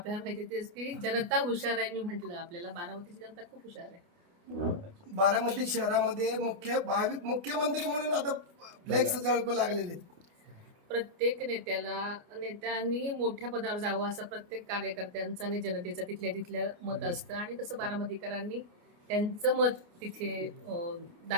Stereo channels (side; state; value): left; late; 29 ms